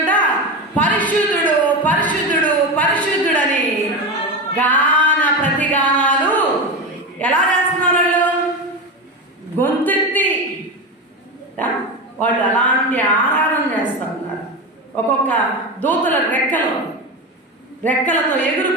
పరిశుద్ధుడు పరిశుద్ధుడు పరిశుద్ధుడని గాన ప్రతిగానాలు ఎలా చేస్తున్నారు? వాళ్ళు గొంతెత్తి వాళ్ళు అలాంటి ఆరాధన చేస్తూ ఉన్నారు. ఒక్కొక్క దూతల రెక్కలతో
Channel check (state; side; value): normal; both; correlation 0.20